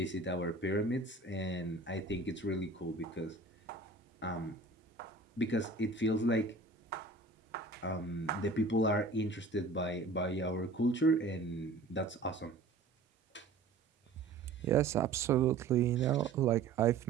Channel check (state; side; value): quieter; left; 3.7 dB